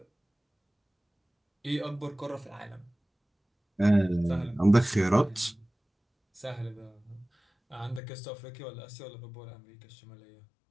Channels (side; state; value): right; drops out; at 8.0 s